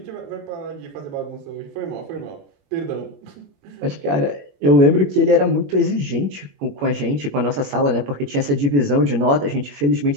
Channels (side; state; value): left; late; 21 ms